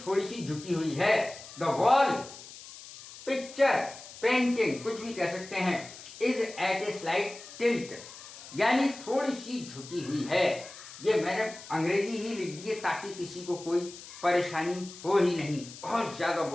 थोड़ी सी झुकी हुई है। द वॉल, पिक्चर, पेंटिंग, कुछ भी कह सकते हैं, is at a slight tilt, यानी थोड़ी सी झुकी हुई है। ये मैंने अंग्रेजी ही लिख दी है ताकि किसी को कोई परेशानी हो ही नहीं, बहुत ज़्यादा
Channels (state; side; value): noise; left; hiss, 16 dB below the sound